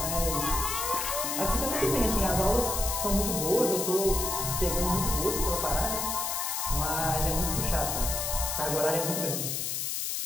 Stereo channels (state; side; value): noise; left; hiss, 1 dB below the sound